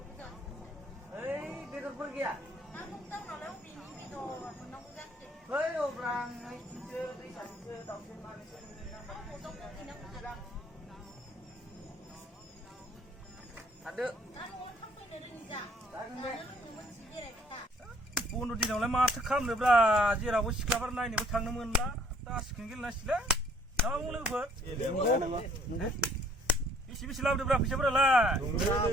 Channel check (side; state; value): both; normal; correlation 0.60